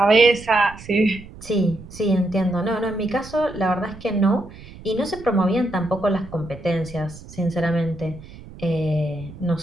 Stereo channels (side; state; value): right; noise; rumble, 17 dB below the sound